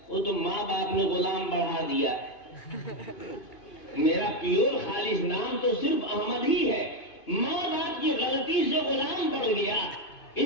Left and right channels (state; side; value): late; right; 2.5 ms